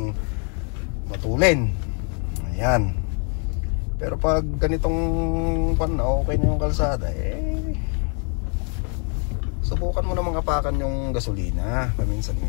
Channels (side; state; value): right; quieter; 39.9 dB